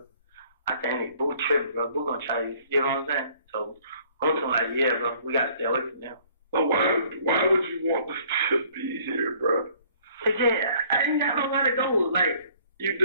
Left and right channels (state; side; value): inverted; both; correlation -0.58